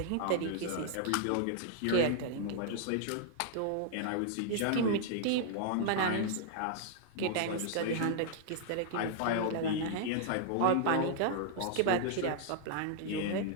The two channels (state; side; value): different; both; correlation -0.01